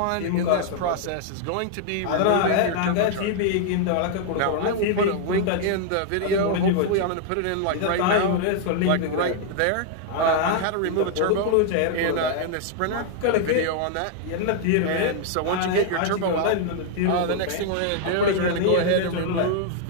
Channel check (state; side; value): different; both; correlation 0.00